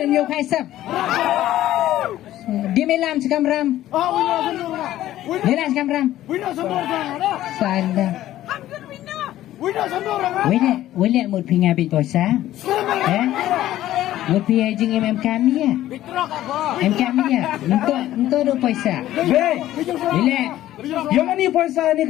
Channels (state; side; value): quieter; right; 13.8 dB